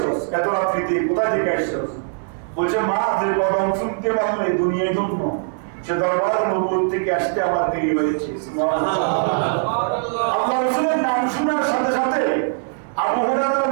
এত রাত্রিতে, কোথায় থেকে আসছস? বলছে মা, যে কদম শুনতে পারলে দুনিয়ায় জন্ম, সে দরবার নবুয়ত থেকে আসতে আমার দেরি হয়েছে। সুবহানাল্লাহ। আল্লাহ রাসূলের নাম শোনার সাথে সাথে আবু হুরায়রার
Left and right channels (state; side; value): silent; left; digital silence